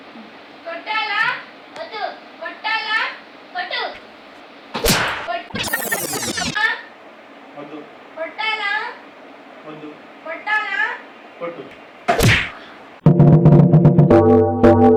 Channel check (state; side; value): identical; both; correlation 1.00